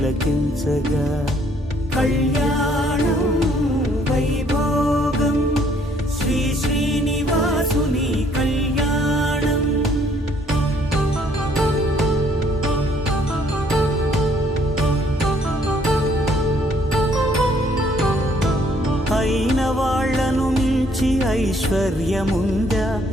కళ్యాణం వైభోగం శ్రీ శ్రీనివాసుని కళ్యాణం అయిన వాళ్లను మించి ఐశ్వర్యముందా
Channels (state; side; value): normal; both; correlation 0.64